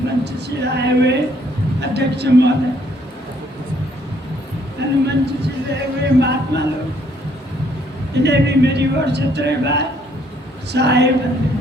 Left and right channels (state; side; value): normal; both; correlation 0.66